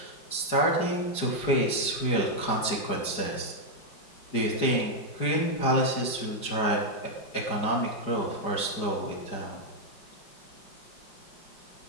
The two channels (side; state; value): right; late; 4.9 ms